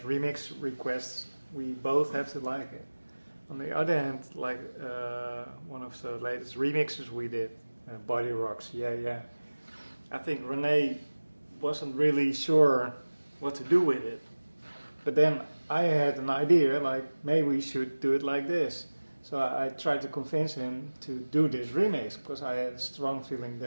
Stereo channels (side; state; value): both; inverted; correlation -1.00